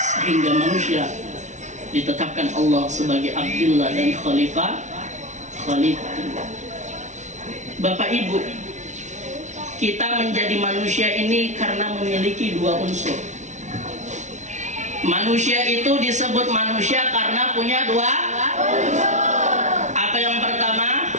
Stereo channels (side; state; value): left; late; 0.34 ms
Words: manusia ditetapkan Allah sebagai Abdullah dan Khalifah. Bapak Ibu, kita menjadi manusia ini karena memiliki dua unsur. Manusia itu disebut manusia karena punya dua unsur. Apa yang pertama?